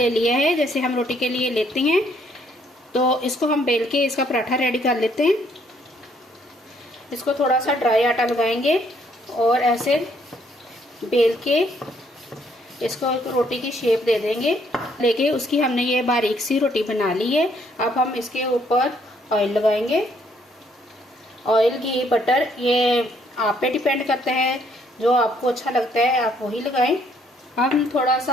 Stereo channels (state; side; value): normal; both; correlation 0.67